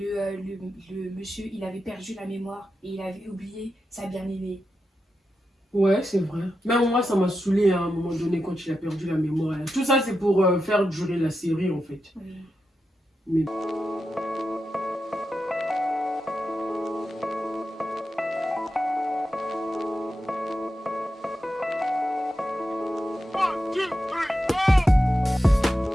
monsieur, il avait perdu la mémoire et il avait oublié sa bien-aimée. Ouais, c'est vrai. Même moi, ça m'a saoulé à un moment donné quand il a perdu la mémoire. Tout ça, c'est pour faire durer la série, en fait. Oui. Mais...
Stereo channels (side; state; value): both; normal; correlation 0.89